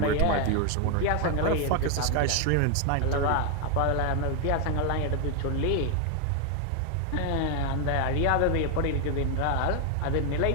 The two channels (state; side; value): different; both; correlation 0.01